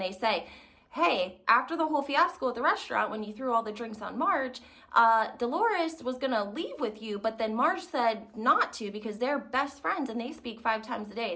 they say, hey, after the whole fiasco at the restaurant when you threw all the drinks on Marge, Dolores was gonna leave with you, but then Marge said not to because they're best friends and they speak 5 times a day.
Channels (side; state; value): both; identical; correlation 1.00